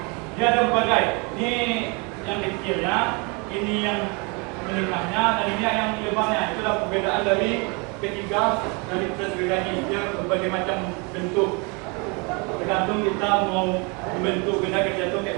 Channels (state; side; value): quieter; left; 31.2 dB